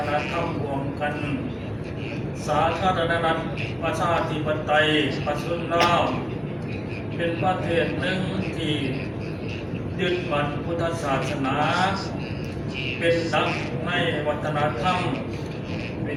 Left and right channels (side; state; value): both; identical; correlation 1.00